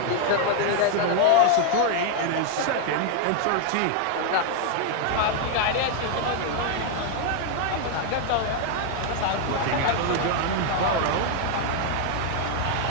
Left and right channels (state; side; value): different; both; correlation 0.00